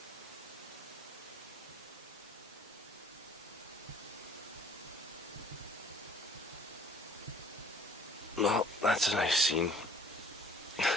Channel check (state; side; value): normal; both; correlation 0.54